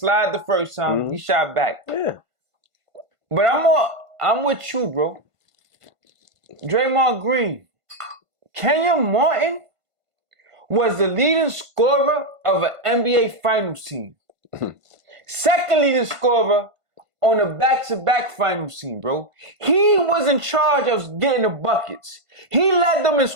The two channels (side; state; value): left; late; 1.5 ms